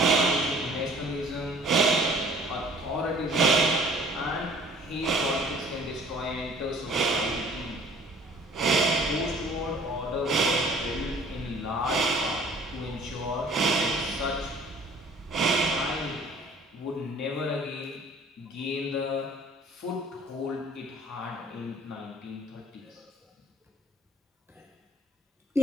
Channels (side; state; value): both; normal; correlation 0.52